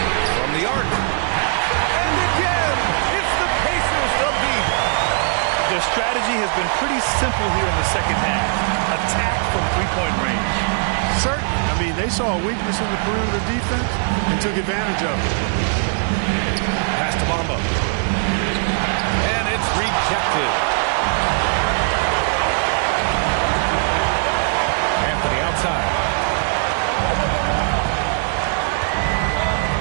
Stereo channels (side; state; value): left; silent; 59 dB below the other